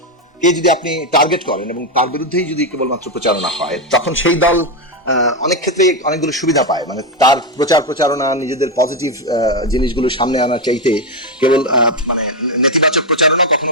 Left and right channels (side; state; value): both; normal; correlation 0.06